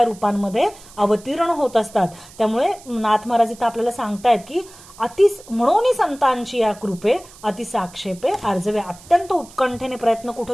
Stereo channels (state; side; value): noise; right; hiss, 21 dB below the sound